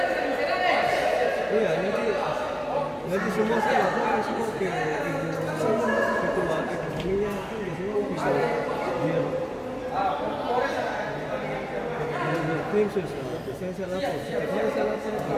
Iya, nanti semua saya lakukan semua ke ibu ketua ekonominya kan biasanya bisa dia klaim saya lapor, setiap hari saya lapor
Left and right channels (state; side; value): identical; both; correlation 1.00